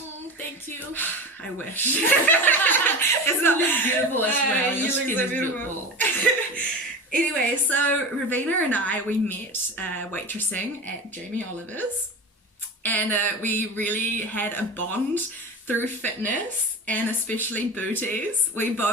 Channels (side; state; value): both; normal; correlation 0.29